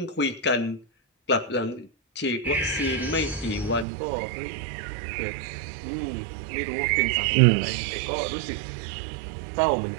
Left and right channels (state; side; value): drops out; left; at 3.9 s